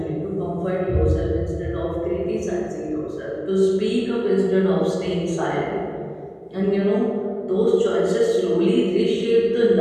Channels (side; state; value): both; identical; correlation 1.00